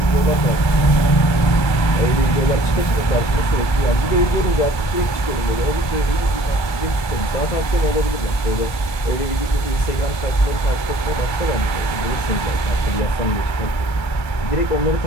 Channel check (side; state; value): right; late; 1.3 ms